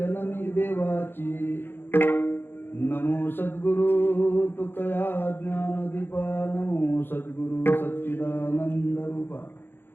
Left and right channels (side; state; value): right; late; 0.10 ms